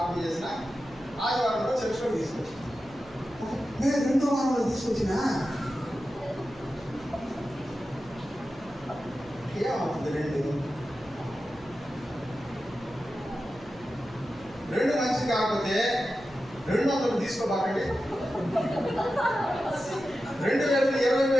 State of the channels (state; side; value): noise; right; hum, 22 dB below the sound